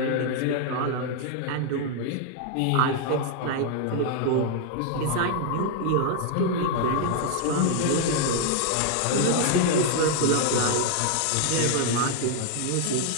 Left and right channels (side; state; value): both; different; correlation 0.00